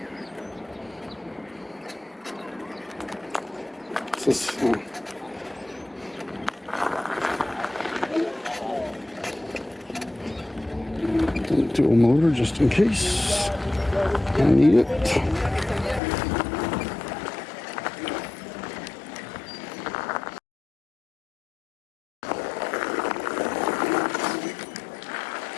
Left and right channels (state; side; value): drops out; right; at 16.0 s